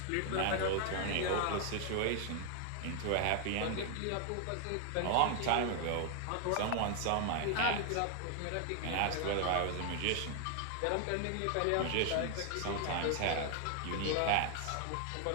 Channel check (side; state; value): both; different; correlation 0.00